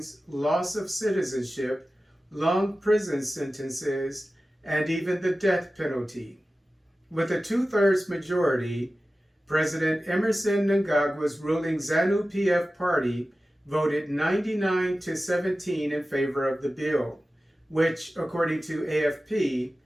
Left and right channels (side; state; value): both; normal; correlation 0.95